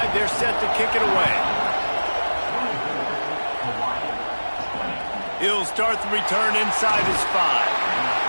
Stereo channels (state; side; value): inverted; both; correlation -1.00